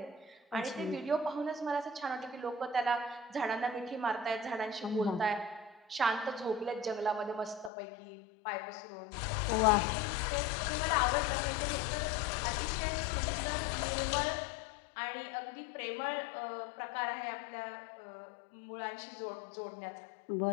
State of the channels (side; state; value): right; drops out; at 7.7 s